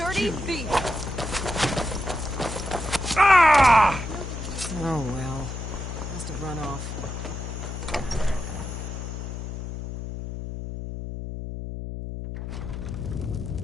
thief! Ah! Oh well. Must have run off.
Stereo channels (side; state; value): left; noise; hum, 7 dB below the sound